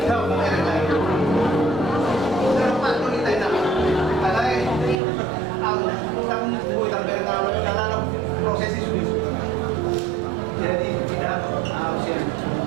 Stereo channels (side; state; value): left; drops out; at 5.0 s